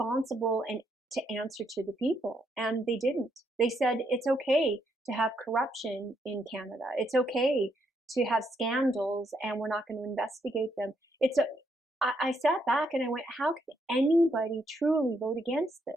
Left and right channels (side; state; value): both; normal; correlation 0.76